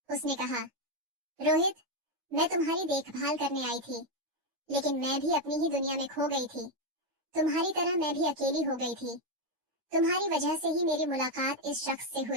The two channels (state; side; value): late; left; 9.6 ms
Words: उसने कहा, रोहित, मैं तुम्हारी देखभाल करने आई थी, लेकिन मैं भी अपनी ही दुनिया में खो गई थी। तुम्हारी तरह मैं भी अकेली हो गई थी। तुम्हारी वजह से ही मेरी मुलाकात इस शख्स से